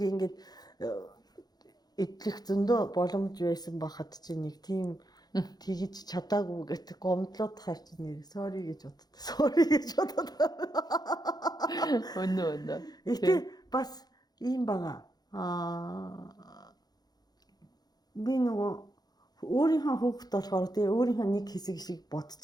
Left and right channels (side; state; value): right; late; 0.19 ms